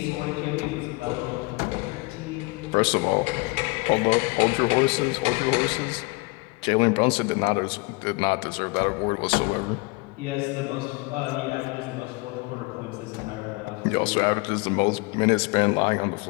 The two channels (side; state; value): right; quieter; 26.9 dB